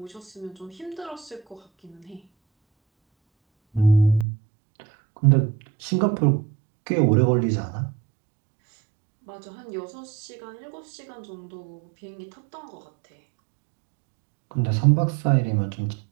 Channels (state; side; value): drops out; left; at 4.2 s